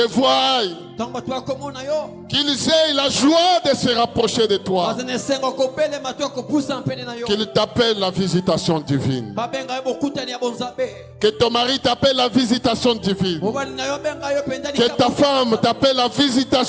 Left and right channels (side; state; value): both; identical; correlation 1.00